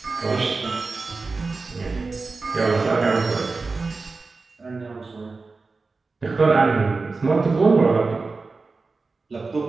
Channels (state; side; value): quieter; left; 4.0 dB